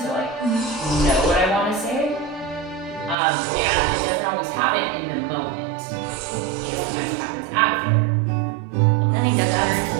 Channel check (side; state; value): left; drops out; at 3.2 s